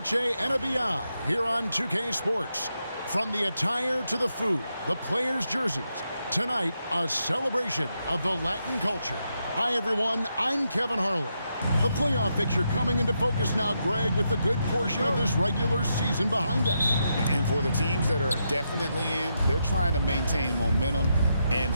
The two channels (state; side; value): inverted; both; correlation -0.83